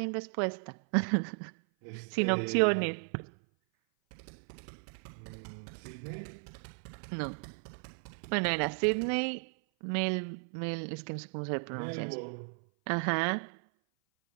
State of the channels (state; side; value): silent; left; 55 dB below the other